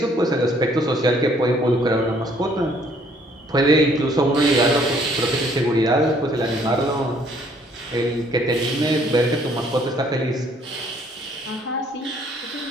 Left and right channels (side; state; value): both; normal; correlation 0.62